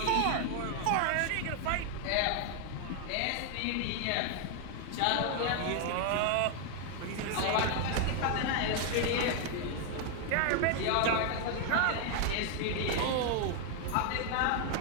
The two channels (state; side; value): different; both; correlation 0.00